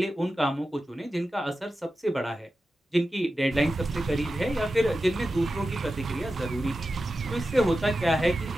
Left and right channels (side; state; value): both; normal; correlation 0.92